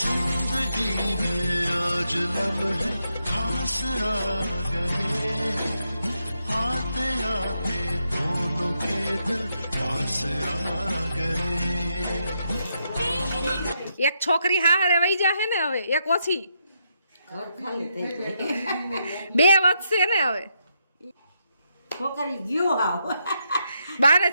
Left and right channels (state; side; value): inverted; both; correlation -0.81